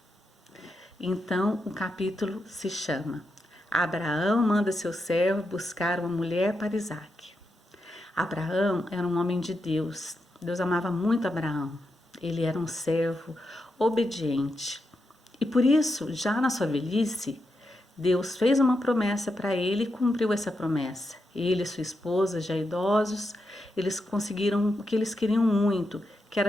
Então, o capítulo se chama Abraão manda seu servo buscar uma mulher para Isaac. Abraão era um homem de Deus. Deus amava muito Abraão. Ele era um servo obediente. E por isso, já na sua velhice, Deus fez uma promessa para ele e cumpriu essa promessa. Ele e sua esposa, já idosos, eles conseguiram o que eles queriam muito, que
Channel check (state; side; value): normal; both; correlation 0.85